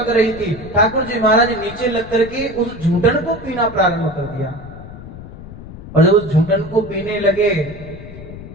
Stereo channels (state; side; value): noise; left; rumble, 14 dB below the sound